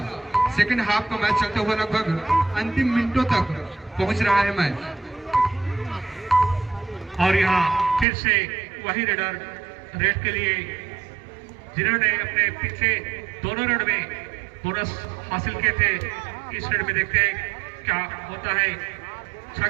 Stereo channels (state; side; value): drops out; left; at 8.1 s